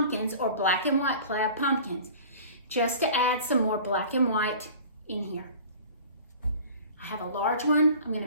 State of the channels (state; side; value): inverted; both; correlation -0.43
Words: or black and white plaid pumpkins just to add some more black and white in here. I have a large one I'm going